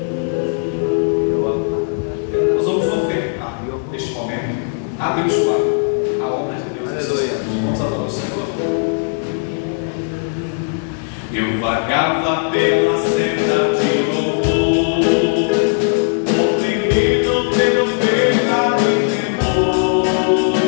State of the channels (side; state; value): right; silent; digital silence